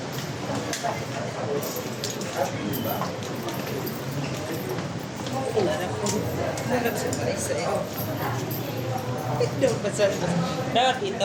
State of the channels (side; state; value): both; identical; correlation 1.00